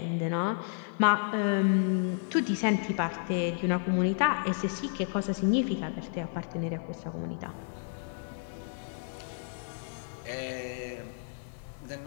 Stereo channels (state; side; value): silent; right; 57 dB below the other